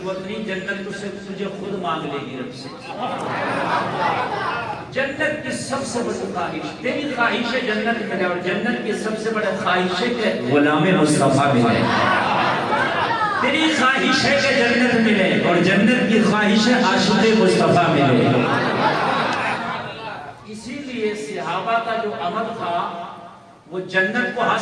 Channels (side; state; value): both; identical; correlation 1.00